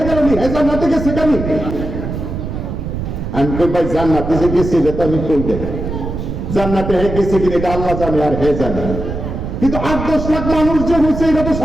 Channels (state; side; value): noise; right; rumble, 5 dB below the sound